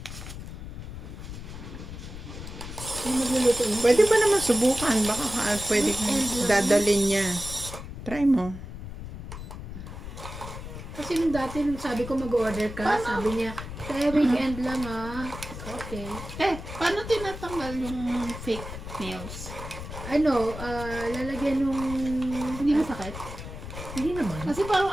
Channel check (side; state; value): left; noise; rumble, 10 dB below the sound